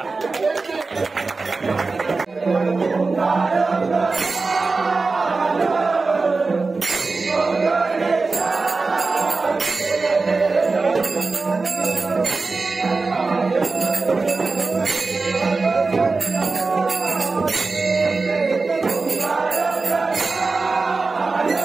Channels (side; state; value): left; quieter; 3.9 dB